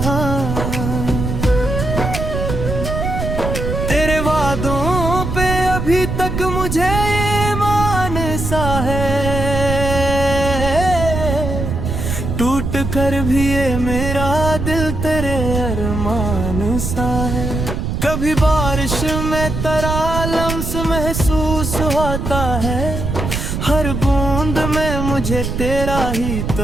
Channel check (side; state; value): right; noise; rumble, 3 dB below the sound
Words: तेरे वादों पे अभी तक मुझे ईमान सा है, टूट कर भी ये मेरा दिल तेरे अरमान सा है। कभी बारिश में तेरा लम्स महसूस होता है, हर बूंद में मुझे तेरा ही